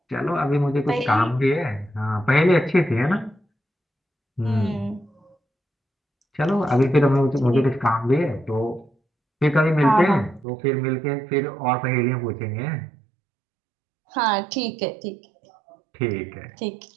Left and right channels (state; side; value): drops out; left; at 10.5 s